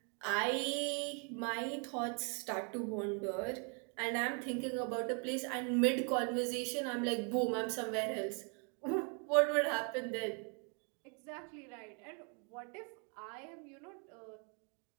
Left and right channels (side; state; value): left; quieter; 37.5 dB